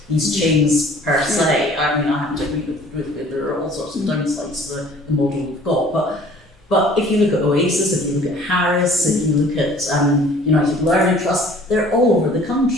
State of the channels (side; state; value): both; normal; correlation 0.52